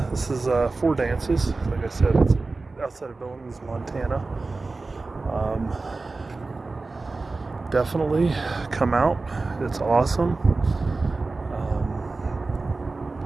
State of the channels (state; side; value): quieter; left; 3.6 dB